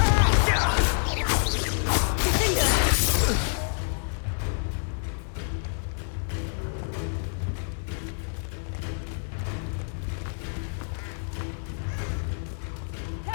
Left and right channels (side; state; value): right; silent; digital silence